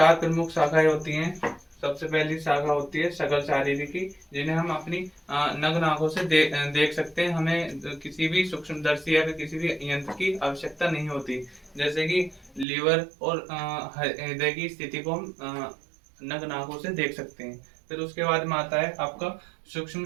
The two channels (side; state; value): left; drops out; at 12.7 s